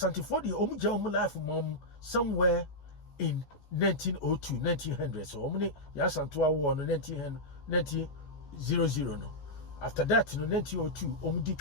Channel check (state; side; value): late; right; 14 ms